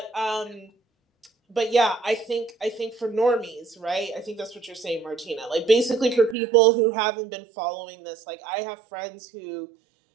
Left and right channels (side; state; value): left; drops out; at 6.4 s